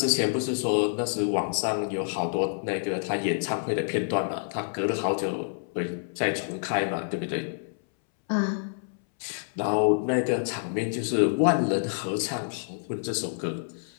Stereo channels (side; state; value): right; silent; 60 dB below the other